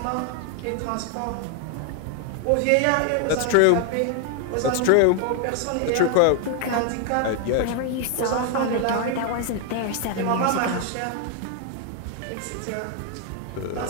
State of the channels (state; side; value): different; both; correlation 0.00